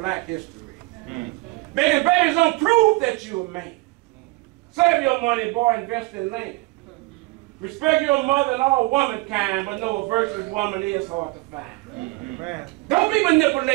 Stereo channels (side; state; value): left; quieter; 23.6 dB